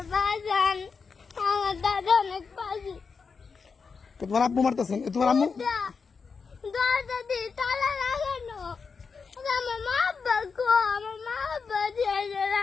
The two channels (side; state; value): right; quieter; 5.2 dB